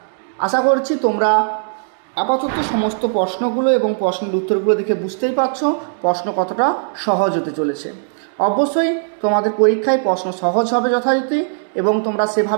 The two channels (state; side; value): silent; left; digital silence